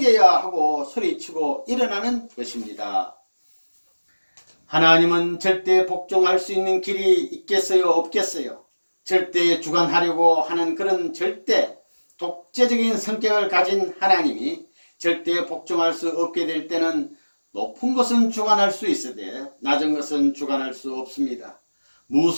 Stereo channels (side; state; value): both; inverted; correlation -1.00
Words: 하고 소리치고 일어나는 것입니다. 하나님은 절대 복종할 수 있는 길이 있겠어요? 없겠어요? 절대 주관하려고 하는 그런 절대 독재적인 성격을 가진 하나님이 절대 복종할 수 없게 될 때는 높은 것은 주관할 수 있으되 낮은 것은 주관할 수 없습니다.